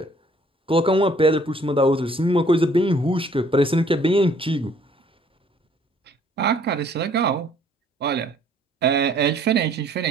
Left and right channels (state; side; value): normal; both; correlation 0.60